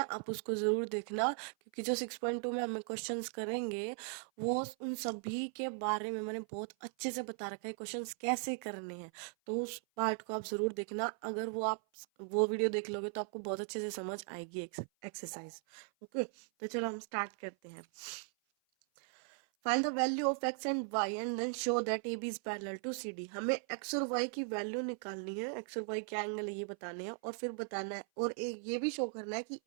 आप उसको ज़रूर देखना, क्योंकि जो 6.2 में हमें क्वेश्चंस करेंगे वो उन सभी के बारे में मैंने बहुत अच्छे से बता रखा है, क्वेश्चंस कैसे करने हैं। तो उस पार्ट को आप ज़रूर देखना। अगर वो वीडियो देख लोगे तो आपको बहुत अच्छे से समझ आएगी एक्सरसाइज। ओके, तो चलो हम स्टार्ट करते हैं। Find the value of x and y and then show that AB is parallel to CD। हमें x और y की वैल्यू निकालनी है, x और y क्या एंगल है ये बताने हैं, और फिर बताना है और ये भी शो करना है कि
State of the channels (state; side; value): silent; left; 52 dB below the other